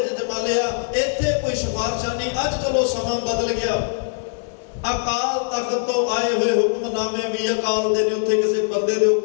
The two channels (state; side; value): silent; right; 63 dB below the other